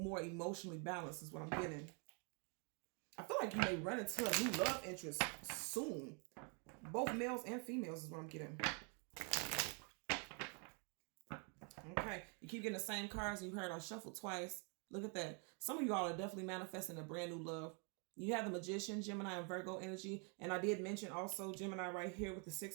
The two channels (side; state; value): left; quieter; 37.3 dB